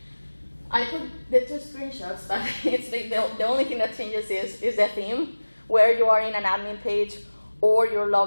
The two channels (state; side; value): inverted; both; correlation -1.00